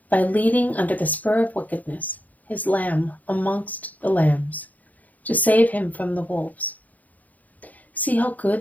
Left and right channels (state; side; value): late; right; 0.078 ms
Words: by leading under the spur of wickedness his lamb amongst the lambs, to save him from the wolves. See how good